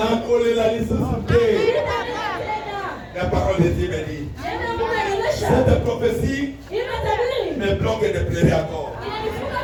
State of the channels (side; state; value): both; identical; correlation 1.00